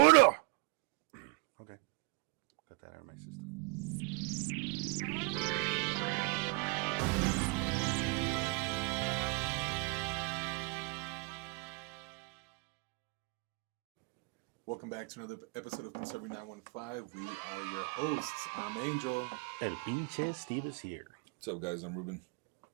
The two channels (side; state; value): left; quieter; 30.0 dB